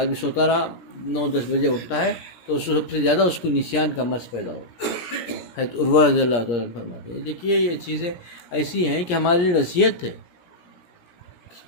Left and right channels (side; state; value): right; late; 17 ms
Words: بھی سوتا رہا، 9-10 بجے اٹھتا ہے، تو سب سے زیادہ اس کو نسیان کا مرض پیدا ہوگا. حضرت عروہ رضی اللہ تعالیٰ فرماتے ہیں. دیکھیے یہ چیزیں ایسی ہیں کہ ہمارے لیے نصیحت ہے.